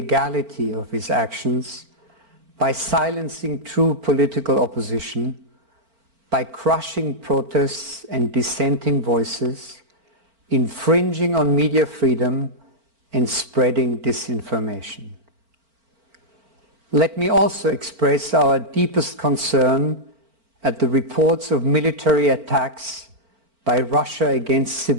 of his actions by silencing true political opposition, by crushing protests and dissenting voices, infringing on media freedom and spreading disinformation. Let me also express our deepest concern at the reports of military attacks by Russia against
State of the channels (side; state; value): left; late; 4.4 ms